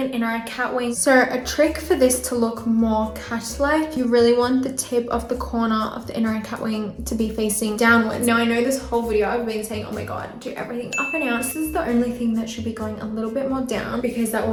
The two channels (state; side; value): identical; both; correlation 1.00